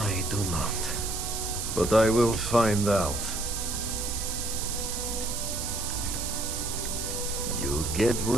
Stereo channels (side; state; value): right; noise; hiss, 4 dB below the sound